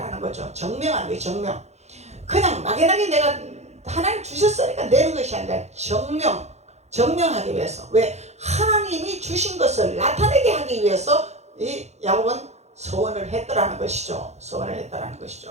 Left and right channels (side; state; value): left; late; 0.32 ms